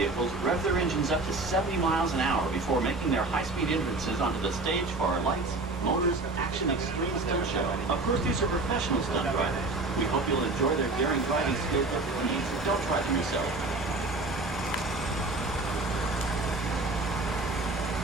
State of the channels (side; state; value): left; quieter; 3.2 dB